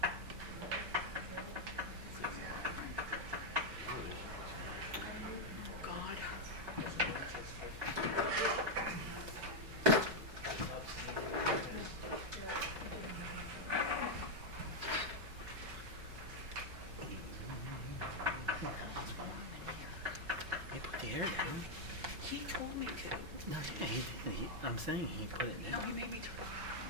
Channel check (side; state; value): left; late; 5.1 ms